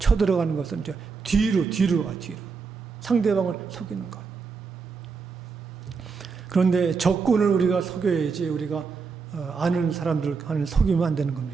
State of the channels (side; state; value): left; quieter; 5.1 dB